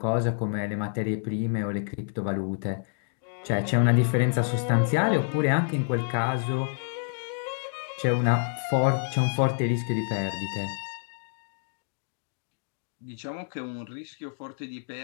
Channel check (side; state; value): right; silent; digital silence